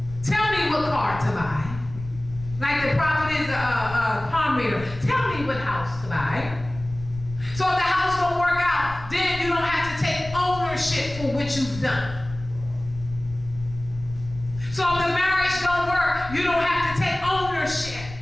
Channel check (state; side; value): noise; left; rumble, 13 dB below the sound